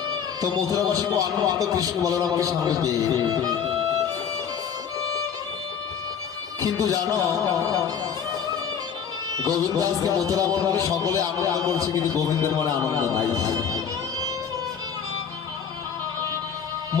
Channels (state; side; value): quieter; right; 7.4 dB